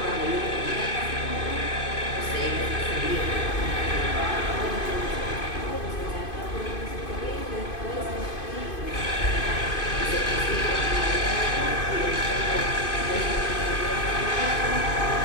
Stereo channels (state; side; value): late; right; 2.5 ms